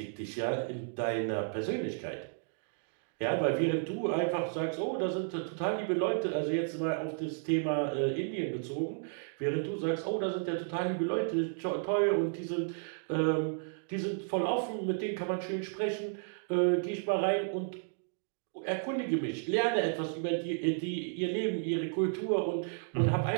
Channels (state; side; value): silent; left; digital silence